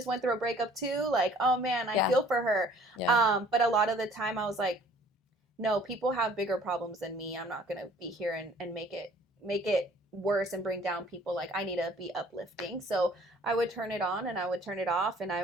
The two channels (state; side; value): normal; both; correlation 0.55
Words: went through a breakup too. Like, oh man, I feel for her. Yeah. But a lot of the time I was like, no, people have bigger problems than me. I'm not gonna be here and make it worse and bring down people. Like, I need to be uplifting. So I would turn it on and I would turn it off, and I